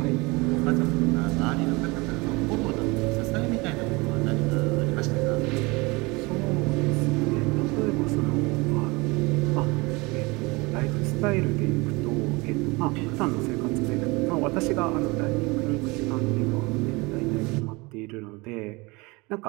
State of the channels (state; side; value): quieter; left; 25.1 dB